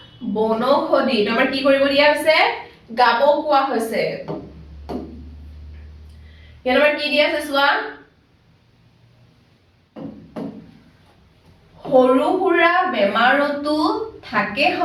বনৌষধি তোমাৰ কি কৰিব দিয়া আছে গাব কোৱা হৈছে ইয়াত আমাৰ কি দিয়া আছে চোৱা সৰু সুৰা বেমাৰতো থাকে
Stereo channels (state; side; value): identical; both; correlation 1.00